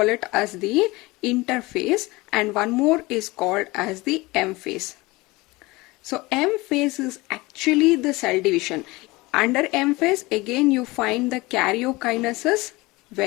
it as the interphase and one more is called as the M phase. So M phase is actually the cell division. Under M phase again you find the karyokinesis,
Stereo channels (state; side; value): quieter; right; 22.1 dB